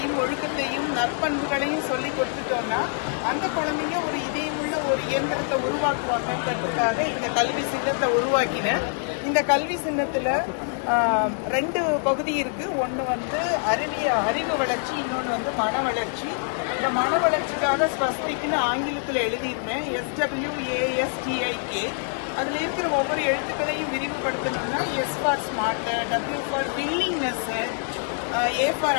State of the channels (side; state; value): right; silent; 58 dB below the other